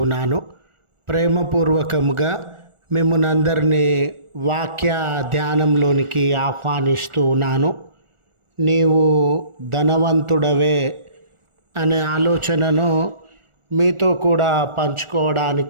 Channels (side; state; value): left; late; 1.4 ms